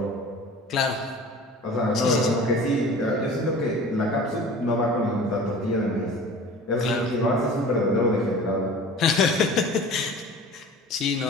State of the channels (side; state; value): both; normal; correlation 0.41